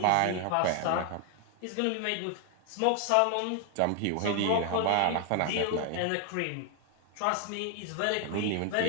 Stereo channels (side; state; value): both; different; correlation 0.01